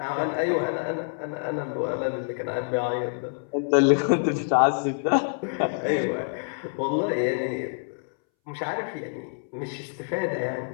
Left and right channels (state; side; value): silent; right; 60 dB below the other